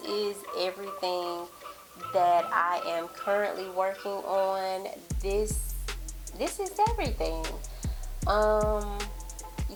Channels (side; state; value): both; identical; correlation 1.00